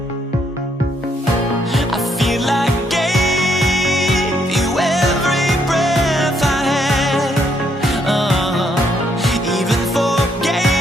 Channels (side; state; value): both; normal; correlation 0.72